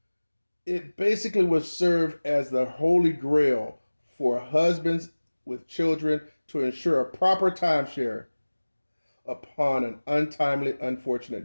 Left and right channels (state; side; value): inverted; both; correlation -1.00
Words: It basically would serve as the holy grail for husbands with children to ensure a proper timeshare upon an untimely, unfortunate